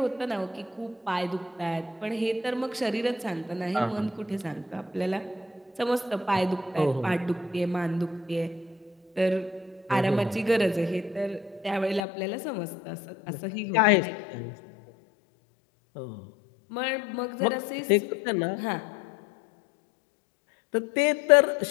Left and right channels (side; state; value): right; drops out; at 12.1 s